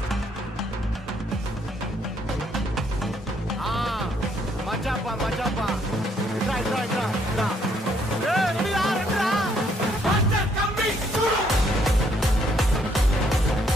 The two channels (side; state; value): both; normal; correlation 0.69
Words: మజాపా మజాపా ఇట్రా ఇట్రా ఇట్రా రెడీరా రెడీరా మాస్టర్ కమింగ్ చూడు